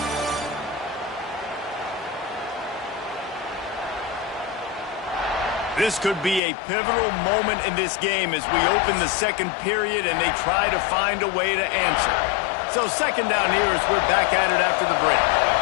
This could be a pivotal moment in this game as we open the second period and they try to find a way to answer. So second down here as we're back at it after the break.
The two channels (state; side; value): drops out; right; at 6.4 s